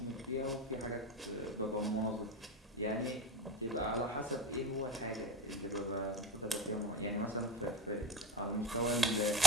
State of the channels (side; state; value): both; normal; correlation 0.27